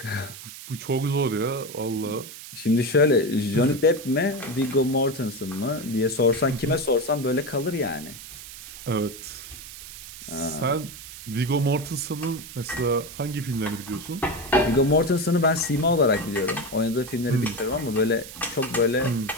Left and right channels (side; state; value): right; noise; hiss, 14 dB below the sound